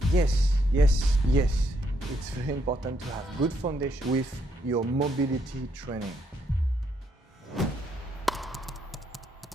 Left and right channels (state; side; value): normal; both; correlation 0.74